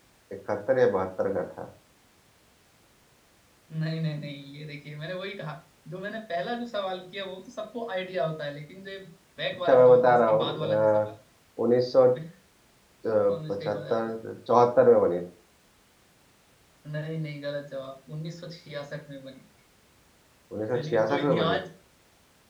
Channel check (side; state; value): both; identical; correlation 1.00